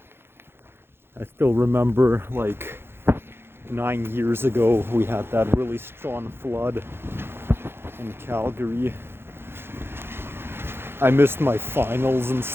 I still remember like 9 years ago we had that really strong flood in Calgary. I missed my finals and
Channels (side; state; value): left; late; 0.11 ms